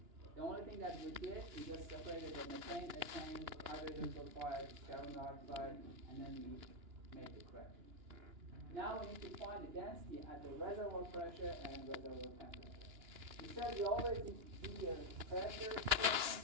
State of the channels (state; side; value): late; left; 2.9 ms